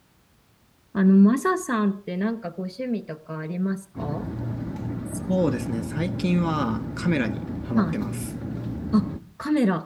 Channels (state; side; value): identical; both; correlation 1.00